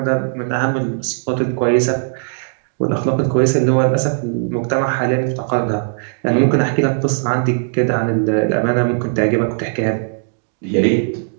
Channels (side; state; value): left; silent; digital silence